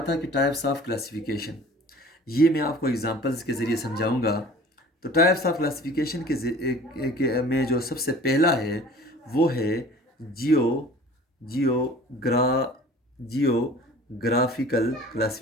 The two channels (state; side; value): normal; both; correlation 0.46